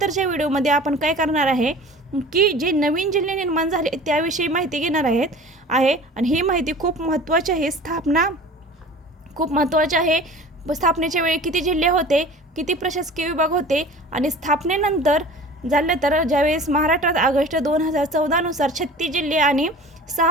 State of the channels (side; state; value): both; normal; correlation 0.42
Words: व्हिडिओमध्ये आपण काय करणार आहे की जे नवीन जिल्हे निर्माण झाले त्याविषयी माहिती घेणार आहे आणि ही माहिती खूप महत्त्वाची आहे। स्थापना खूप महत्त्वाची आहे। स्थापनेच्या वेळी किती जिल्हे होते, किती प्रशासकीय विभाग होते आणि स्थापनेनंतर झालं तर ज्यावेळेस महाराष्ट्रात ऑगस्ट 2014 नुसार 36 जिल्हे आणि